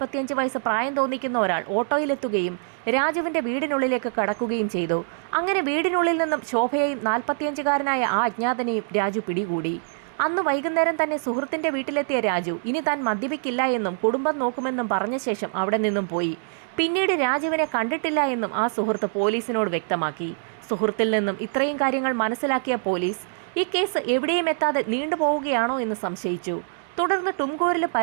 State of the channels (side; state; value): left; silent; digital silence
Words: വയസ്സ് പ്രായം തോന്നിക്കുന്ന ഒരാൾ ഓട്ടോയിലെത്തുകയും രാജുവിന്റെ വീടിനുള്ളിലേക്ക് കടക്കുകയും ചെയ്തു. അങ്ങനെ വീടിനുള്ളിൽ നിന്നും ശോഭയെയും 45-കാരനായ ആ അജ്ഞാതനെയും രാജു പിടികൂടി. അന്ന് വൈകുന്നേരം തന്നെ സുഹൃത്തിന്റെ വീട്ടിലെത്തിയ രാജു ഇനി താൻ മദ്യപിക്കില്ല എന്നും കുടുംബം നോക്കുമെന്നും പറഞ്ഞ ശേഷം അവിടെ നിന്നും പോയി. പിന്നീട് രാജുവിനെ കണ്ടിട്ടില്ല എന്നും ആ സുഹൃത്ത് പോലീസിനോട് വ്യക്തമാക്കി. സുഹൃത്തിൽ നിന്നും ഇത്രയും കാര്യങ്ങൾ മനസ്സിലാക്കിയ പോലീസ് ഈ കേസ് എവിടെയും എത്താതെ നീണ്ടുപോവുകയാണോ എന്ന് സംശയിച്ചു. തുടർന്ന് ടുംകൂരിലും